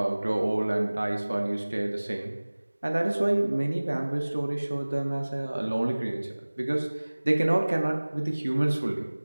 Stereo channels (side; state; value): both; inverted; correlation -1.00